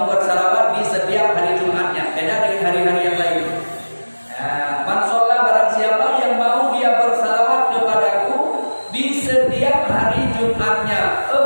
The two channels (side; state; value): both; inverted; correlation -1.00